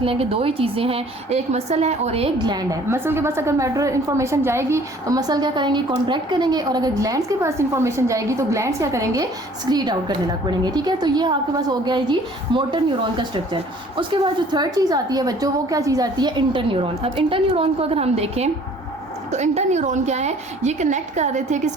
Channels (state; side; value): normal; both; correlation 0.54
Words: लें कि दो ही चीज़ें हैं, एक मसल है और एक ग्लैंड है। मसल के पास अगर मैटर इन्फॉर्मेशन जाएगी तो मसल क्या करेंगे, कॉन्ट्रैक्ट करेंगे, और अगर ग्लैंड्स के पास इन्फॉर्मेशन जाएगी तो ग्लैंड्स क्या करेंगे, स्क्रीट आउट करने लग पड़ेंगे, ठीक है। तो ये आपके पास हो गया है जी मोटर न्यूरॉन का स्ट्रक्चर। उसके बाद जो थर्ड चीज़ आती है बच्चों, वो क्या चीज़ आती है, इंटरन्यूरॉन। अब इंटरन्यूरॉन को अगर हम देखें तो इंटरन्यूरॉन क्या है, ये कनेक्ट कर रहे थे